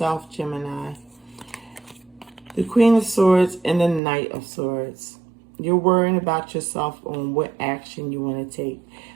Gemini. The Queen of Swords and the Knight of Swords. You're worrying about yourself on what action you want to take.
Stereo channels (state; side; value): drops out; left; at 4.0 s